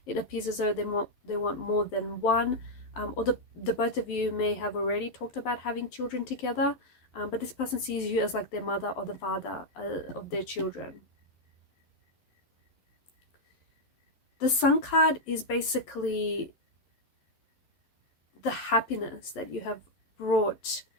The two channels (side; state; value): right; late; 11 ms